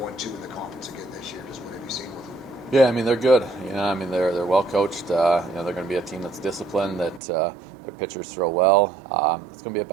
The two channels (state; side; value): drops out; left; at 7.2 s